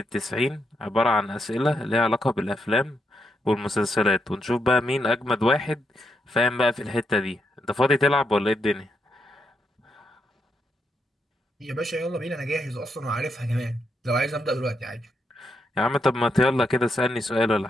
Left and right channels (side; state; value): both; normal; correlation 0.81